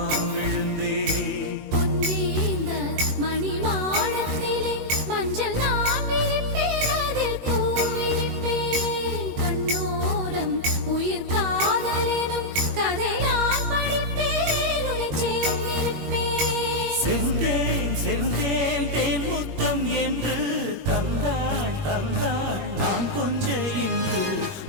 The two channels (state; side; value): late; left; 21 ms